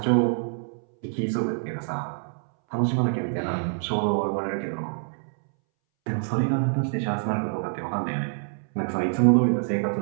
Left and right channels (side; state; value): left; silent; 61 dB below the other